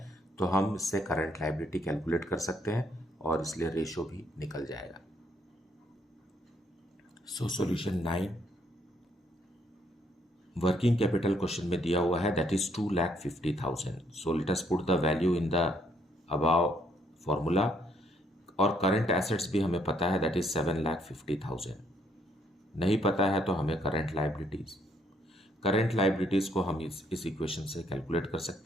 तो हम इससे करंट लायबिलिटी कैलकुलेट कर सकते हैं और इसलिए रेशियो भी निकल जाएगा. So solution 9, working capital question में दिया हुआ है that is 2,50,000. So let us put the value in the above formula. और करंट एसेट्स भी हमें पता है दैट इज 7,50,000. नहीं पता है तो हमें करंट लाइबिलिटीज को हम इस इक्वेशन से कैलकुलेट कर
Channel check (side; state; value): both; normal; correlation 0.70